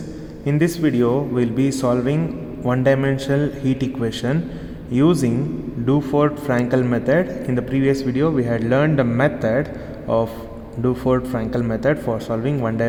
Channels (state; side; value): identical; both; correlation 1.00